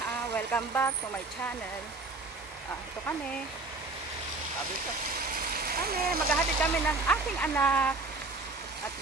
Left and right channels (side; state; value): left; quieter; 3.3 dB